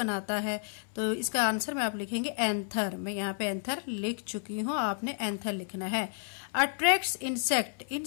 है। तो इसका आंसर में आप लिखेंगे एंथर। मैं यहाँ पे एंथर लिख चुकी हूँ, आपने एंथर लिखना है। अट्रैक्ट्स इंसेक्ट,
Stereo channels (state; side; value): silent; right; 57 dB below the other